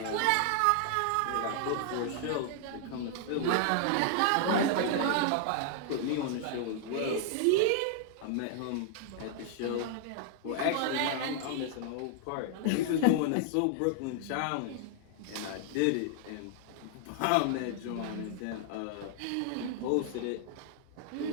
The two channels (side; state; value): both; different; correlation 0.00